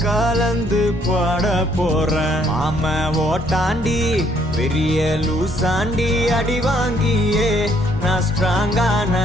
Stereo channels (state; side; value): normal; both; correlation 0.67